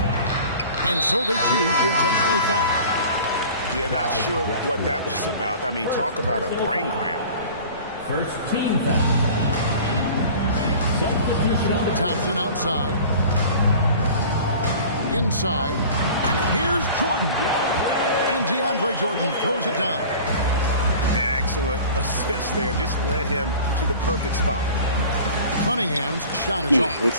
And so they choose to intentionally foul. Yeah, not sure what that was about. I mean, talk about a brain cramp. First team foul. Substitution on the Thompson outside. Inside. Here's Jordan. And DeAndre Jordan throws it down. Yeah, excellent assist there. Just led him to the perfect spot. Cunningham's shot is off.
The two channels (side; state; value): both; inverted; correlation -0.42